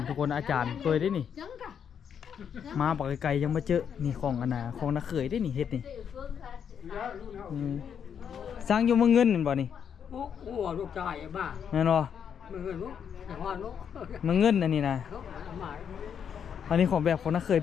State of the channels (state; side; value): quieter; right; 7.8 dB